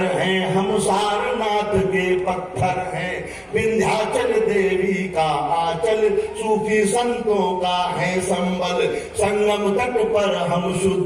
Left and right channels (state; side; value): identical; both; correlation 1.00